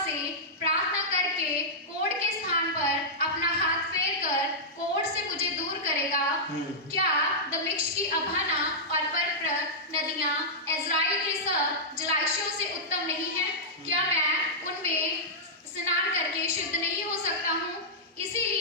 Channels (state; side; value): normal; both; correlation -0.11